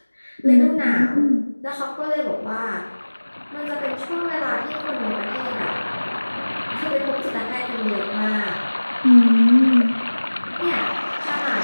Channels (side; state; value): both; inverted; correlation -1.00